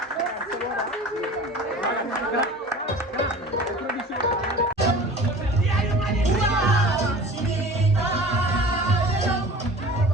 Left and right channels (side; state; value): both; normal; correlation 0.40